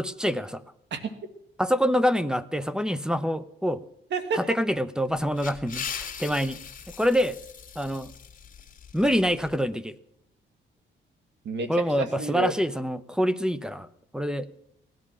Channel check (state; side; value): normal; both; correlation 0.83